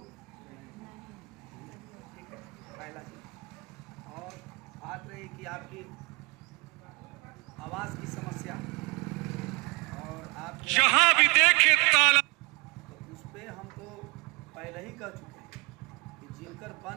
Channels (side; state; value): left; quieter; 29.0 dB